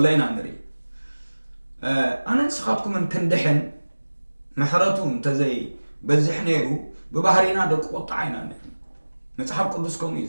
ኢና ንርኢ ኣነ ንስኻትኩምን ክንድሕን ምሕረቱ እንተዘይ በዝሕ ነይሩ ብባህሪና ደቂ ቁጣዕ ኢና ንርኢ መፅሓፍ ቅዱስ ከምኡ እዩ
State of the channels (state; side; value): inverted; both; correlation -1.00